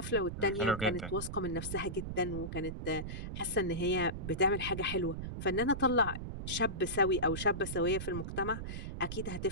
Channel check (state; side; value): noise; right; rumble, 6 dB below the sound